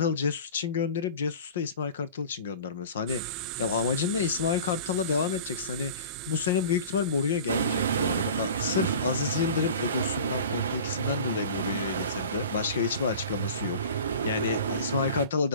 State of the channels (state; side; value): inverted; both; correlation -0.39